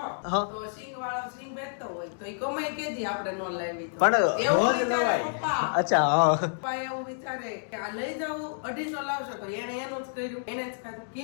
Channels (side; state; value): right; silent; digital silence